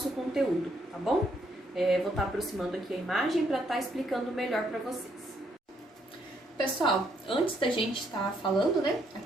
conteúdo, tá bom? Vou estar aproximando aqui a imagem para estar explicando melhor para vocês. Pessoal, antes da gente estar falando, né,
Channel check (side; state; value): both; normal; correlation 0.72